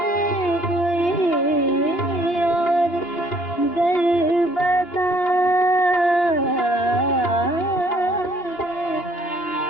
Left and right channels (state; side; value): late; right; 2.9 ms